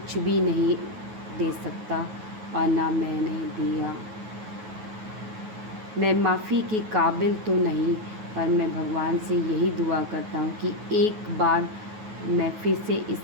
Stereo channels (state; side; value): late; left; 9.4 ms